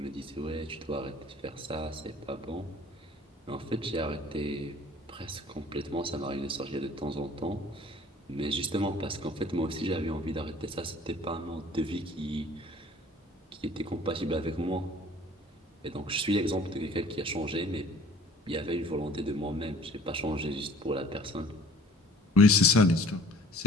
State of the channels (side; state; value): both; normal; correlation 0.51